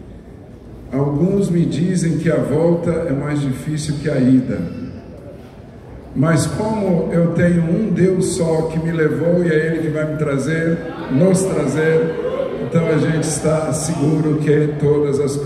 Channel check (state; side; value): identical; both; correlation 1.00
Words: Alguns me dizem que a volta é mais difícil que a ida, mas como eu tenho um Deus só que me levou e é Ele que vai me trazer, nos trazer, então a gente está seguro que todas as